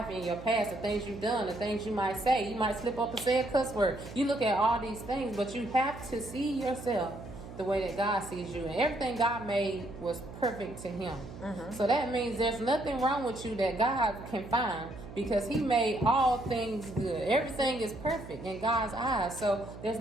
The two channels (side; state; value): right; noise; hum, 13 dB below the sound